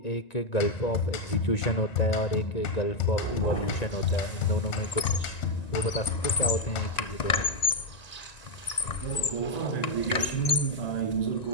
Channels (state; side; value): late; right; 1.9 ms